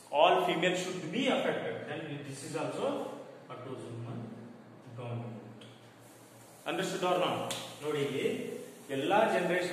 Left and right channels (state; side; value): identical; both; correlation 1.00